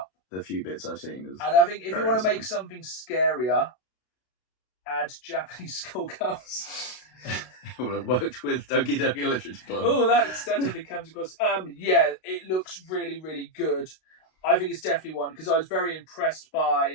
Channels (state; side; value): late; right; 32 ms